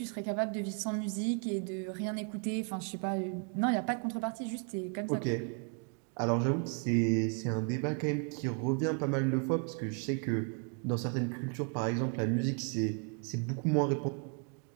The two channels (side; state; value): left; quieter; 39.6 dB